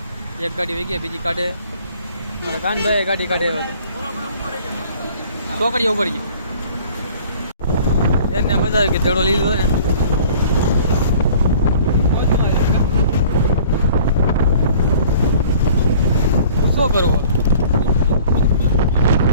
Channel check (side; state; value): both; inverted; correlation -0.50